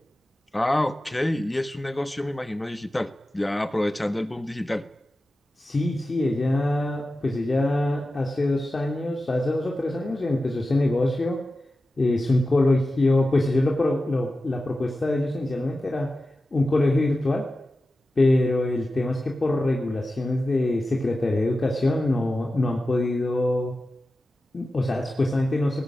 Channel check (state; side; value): normal; both; correlation 0.94